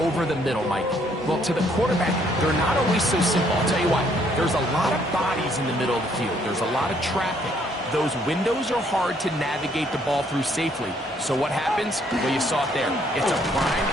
the middle, Mike. Well, to the quarterback, they're not always so simple. I'll tell you what, there's a lot of bodies in the middle of the field. There's a lot of traffic. Those windows are hard to navigate the ball through safely. So what happens? Well, you saw it there. It's a prime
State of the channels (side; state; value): both; normal; correlation 0.67